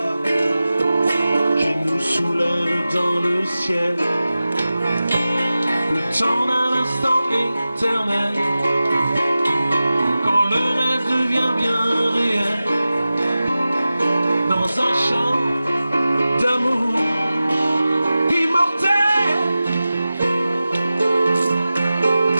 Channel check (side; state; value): both; inverted; correlation -0.95